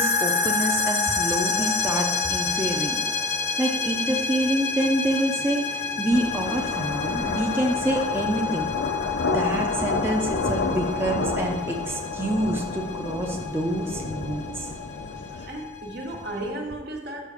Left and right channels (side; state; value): both; normal; correlation 0.39